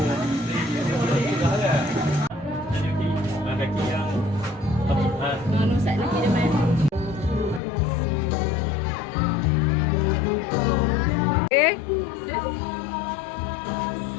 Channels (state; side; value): drops out; right; at 7.6 s